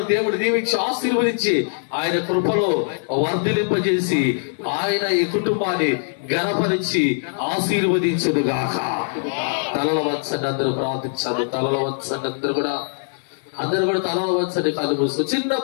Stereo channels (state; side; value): silent; right; 64 dB below the other